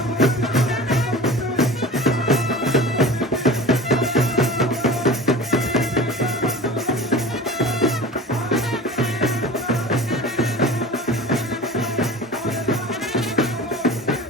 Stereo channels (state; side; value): normal; both; correlation 0.37